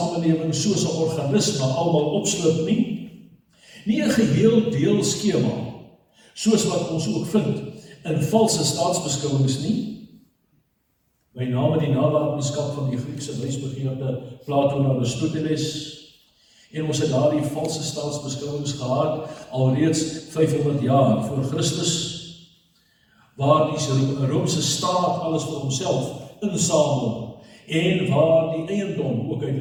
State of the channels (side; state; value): both; identical; correlation 1.00